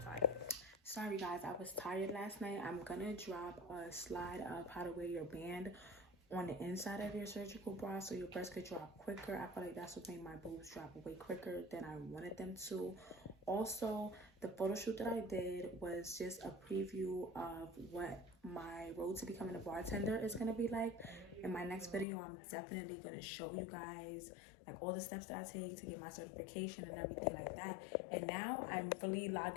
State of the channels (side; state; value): right; drops out; at 22.1 s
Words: Sorry guys, I was tired last night. I'm gonna drop a slide of how to wear your band on the inside of your surgical bra so your breasts could drop quicker. I feel like that's what made my boobs drop way quicker than I wanted them to. Also, the photo shoot that I did was just a preview of what my road to becoming a bartender is gonna be like. In my next video, I'm definitely gonna show you guys like all the steps that I take to get my certification and everything like that. And now I'm really